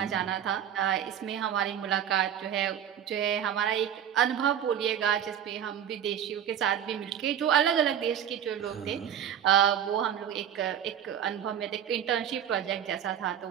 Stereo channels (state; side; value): quieter; left; 9.5 dB